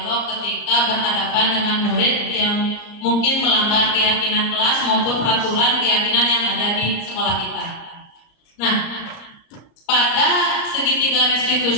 ketika berhadapan dengan murid yang mungkin melanggar keyakinan kelas maupun peraturan keyakinan yang ada di sekolah kita. Nah, pada segitiga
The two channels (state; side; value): late; right; 35 ms